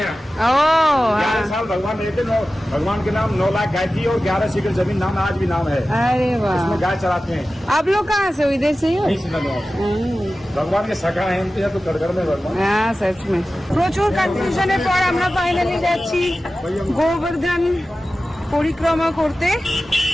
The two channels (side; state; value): both; normal; correlation 0.95